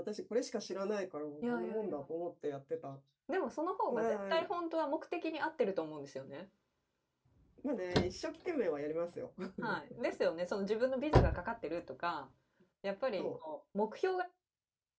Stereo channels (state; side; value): identical; both; correlation 1.00